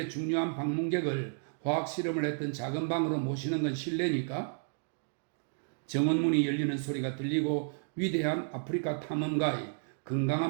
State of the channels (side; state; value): left; silent; digital silence